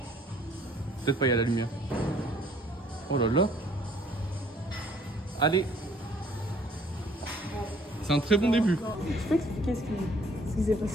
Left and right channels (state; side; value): normal; both; correlation 0.59